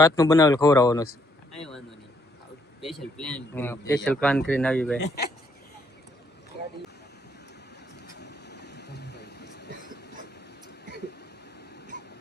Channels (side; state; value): both; normal; correlation 0.71